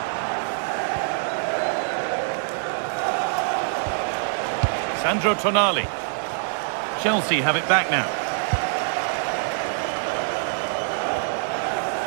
Sandro Tonali. Chelsea have it back now.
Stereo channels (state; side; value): silent; left; digital silence